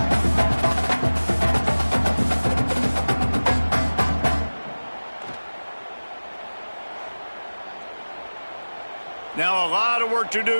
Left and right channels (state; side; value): inverted; both; correlation -1.00